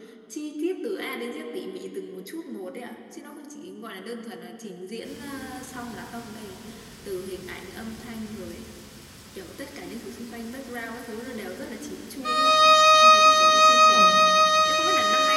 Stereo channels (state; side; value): identical; both; correlation 1.00